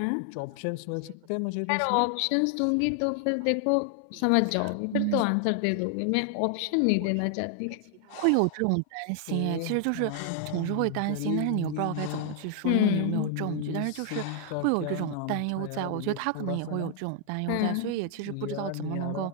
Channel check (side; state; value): both; different; correlation 0.00